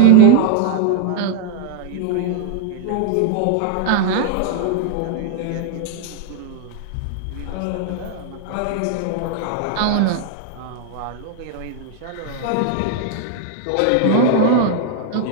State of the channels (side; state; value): both; different; correlation -0.01